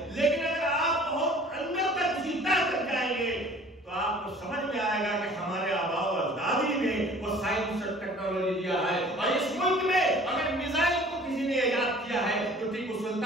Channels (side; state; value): both; normal; correlation 0.49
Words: لیکن اگر آپ بہت اندر تک کسی طرح تک جائیں گے تو آپ کو سمجھ میں آئے گا کہ ہمارے آباء و اجدادی نے وہ سائنس اور ٹیکنالوجی دیا ہے، اور اس ملک میں اگر میزائل کو کسی نے ایجاد کیا ہے تو ٹیپو